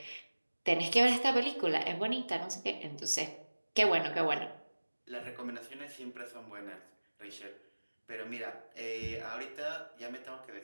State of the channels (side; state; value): both; inverted; correlation -1.00